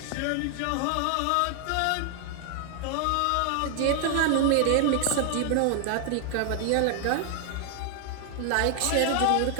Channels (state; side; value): different; both; correlation 0.00